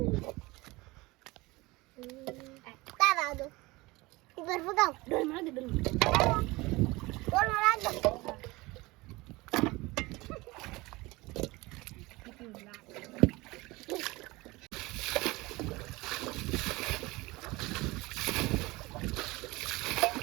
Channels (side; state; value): left; quieter; 22.0 dB